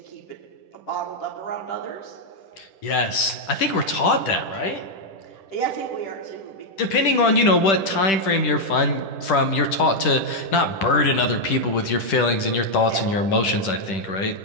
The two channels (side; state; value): right; late; 10 ms